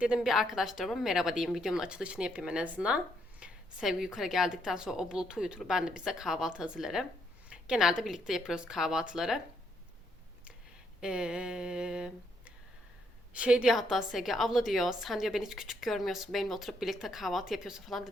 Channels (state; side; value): normal; both; correlation 0.73